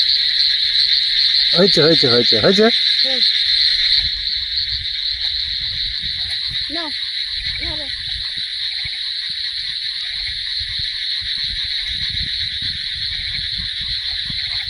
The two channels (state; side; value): identical; both; correlation 1.00